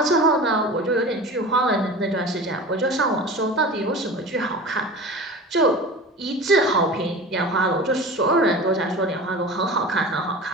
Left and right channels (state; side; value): normal; both; correlation 0.35